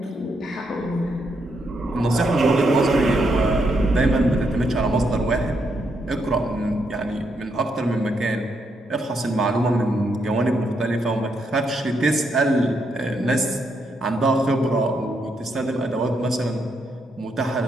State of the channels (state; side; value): normal; both; correlation 0.79